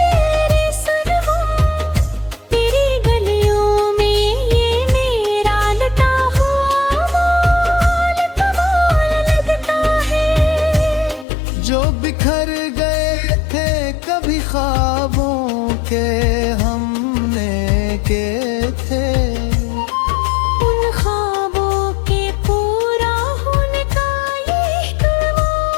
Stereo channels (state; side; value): drops out; right; at 11.2 s